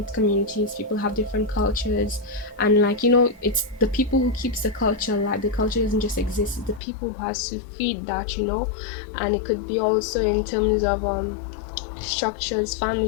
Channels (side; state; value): right; drops out; at 6.8 s